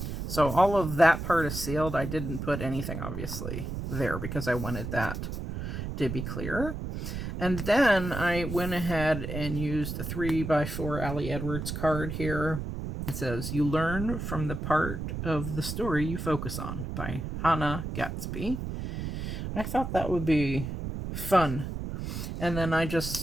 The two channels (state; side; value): noise; right; rumble, 5 dB below the sound